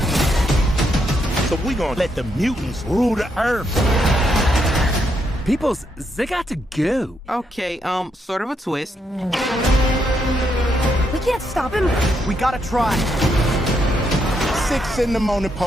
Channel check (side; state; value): both; normal; correlation 0.78